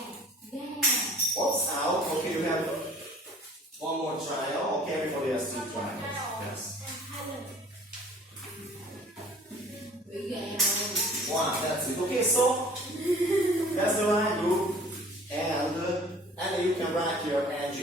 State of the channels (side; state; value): both; normal; correlation 0.49